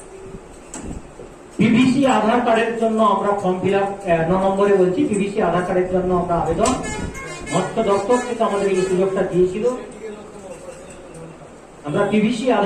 পিভিসি আধার কার্ডের জন্য আমরা ফর্ম ফিল আপ 9 নম্বরে বলছি, পিভিসি আধার কার্ডের জন্য আমরা আবেদন মৎস্য দপ্তর থেকে আমাদের এই সুযোগটা দিয়েছিল। আমরা পিভিসি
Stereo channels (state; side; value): identical; both; correlation 1.00